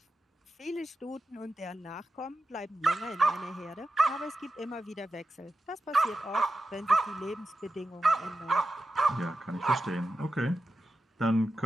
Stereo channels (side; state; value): both; normal; correlation 0.91